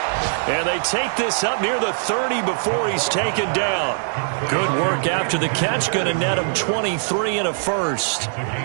And they take this up near the 30 before he's taken down. Good work after the catch. Going to net him 23 and a first.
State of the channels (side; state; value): left; silent; digital silence